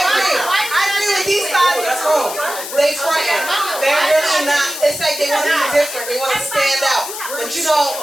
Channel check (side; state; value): left; noise; hiss, 8 dB below the sound